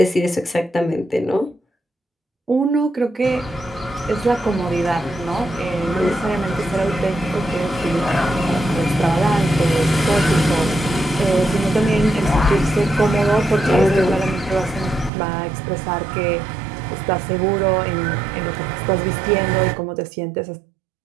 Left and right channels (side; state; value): left; drops out; at 15.1 s